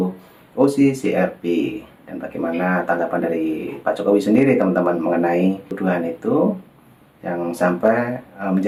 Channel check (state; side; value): identical; both; correlation 1.00